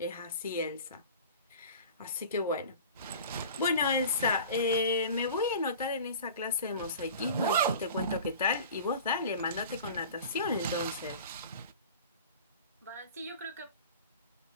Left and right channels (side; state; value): both; inverted; correlation -0.40